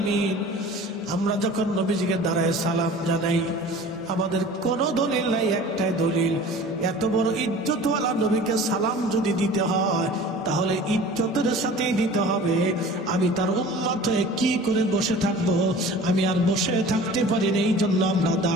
আমরা যখন নবীজিকে দাঁড়ায় সালাম জানাই, আমাদের কোন দলিল নাই, একটাই দলিল। এত বড় ইজ্জতওয়ালা নবীকে সালাম যদি দিতে হয়, তাহলে ইজ্জতের সাথেই দিতে হবে। আমি তার উম্মত হয়ে কি করে বসে থাকবো? আমি আর বসে থাকতে পারি না, এই জন্য আমরা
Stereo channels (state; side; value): normal; both; correlation 0.42